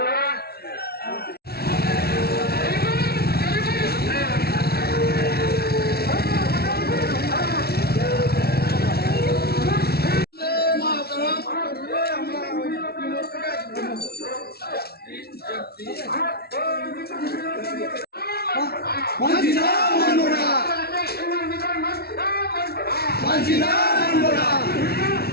মানছি না, মানব না, মানছি না, মানব না।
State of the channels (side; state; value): right; late; 0.45 ms